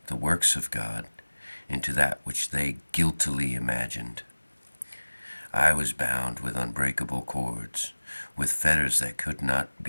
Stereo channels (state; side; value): inverted; both; correlation -1.00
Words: the works of God into that which they guiltily imagined. I was bound with unbreakable cords, with fetters that could not